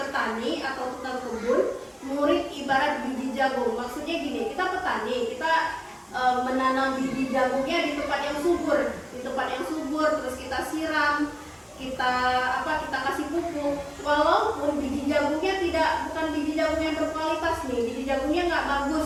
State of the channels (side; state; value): both; identical; correlation 1.00